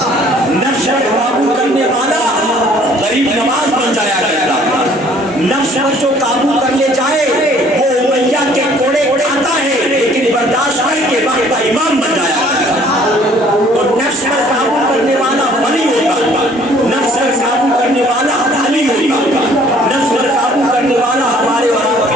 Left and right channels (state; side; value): normal; both; correlation 0.57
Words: نفس پر قابو کرنے والا غریب نواز بن جایا کرتا. نفس پر جو قابو کر لے جائے وہ امیہ کے کوڑے کھاتا ہے لیکن برداشت کر کے وقت کا امام بن جایا کرتا. تو نفس پر قابو کرنے والا ولی ہوتا, نفس پر قابو کرنے والا علی ہوتا, نفس پر قابو کرنے والا ہمارے اور آپ